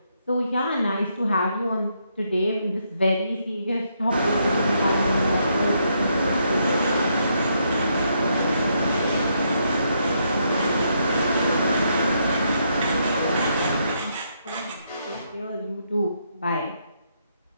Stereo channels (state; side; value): inverted; both; correlation -0.76